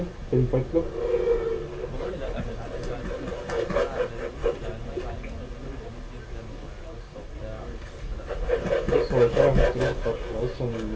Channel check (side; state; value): both; identical; correlation 1.00